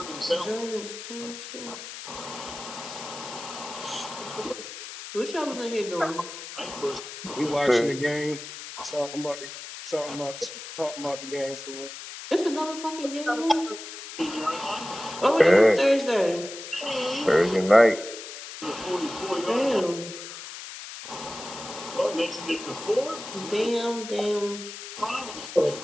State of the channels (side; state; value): left; noise; hiss, 11 dB below the sound